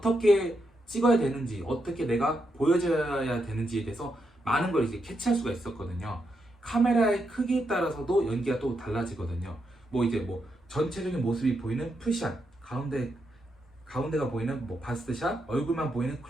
찍어야 되는지 어떻게 내가 보여줘야 되는지에 대해서 많은 걸 이제 캐치할 수가 있었거든요. 카메라의 크기에 따라서도 연기가 또 달라지거든요. 뭐 이제 뭐 전체적인 모습이 보이는 풀샷, 가운데가 보이는 뭐 바스트샷, 얼굴만 보이는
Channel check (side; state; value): both; normal; correlation 0.82